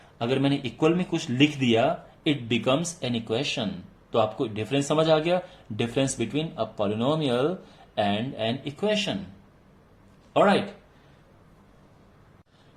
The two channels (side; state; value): both; identical; correlation 1.00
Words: अगर मैंने इक्वल में कुछ लिख दिया, इट बिकम्स एन इक्वेशन। तो आपको डिफरेंस समझ आ गया? Difference between a polynomial and an equation. Alright,